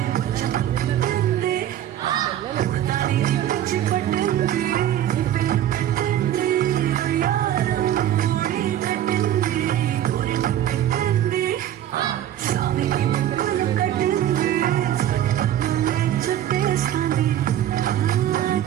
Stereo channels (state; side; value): quieter; left; 11.7 dB